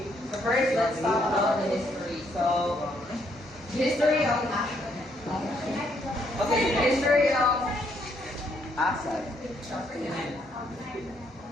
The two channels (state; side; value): normal; both; correlation 0.72